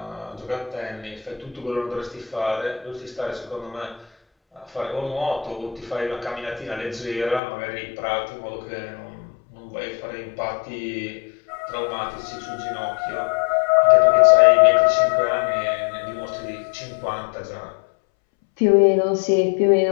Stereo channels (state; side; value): drops out; right; at 7.4 s